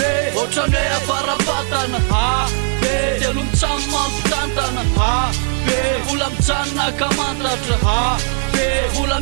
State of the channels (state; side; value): silent; left; 66 dB below the other